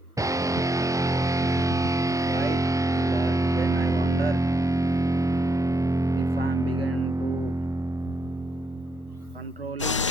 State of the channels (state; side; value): normal; both; correlation 0.79